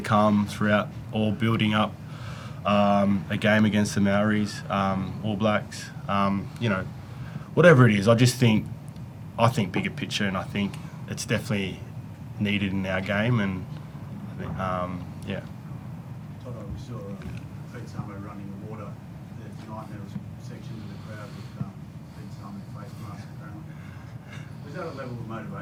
throughout, or building up a game against the Maoris, All Blacks, whatever it is, I think bigger picture, and I think it's definitely needed in our game, and I think, yeah. Toto, we saw Pete Samo running the water there tonight, and there was sections of the crowd with Pete Samo face mask apparently. Was that a level of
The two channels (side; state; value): both; identical; correlation 1.00